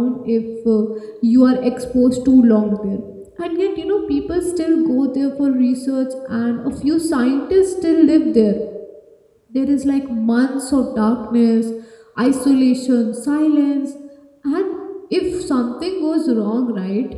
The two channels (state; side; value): identical; both; correlation 1.00